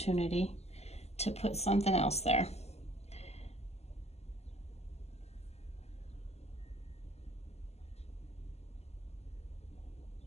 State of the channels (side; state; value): right; late; 0.30 ms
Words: to put something else there.